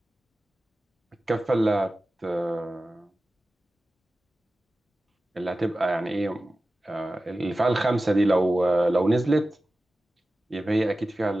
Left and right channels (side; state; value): both; normal; correlation 0.95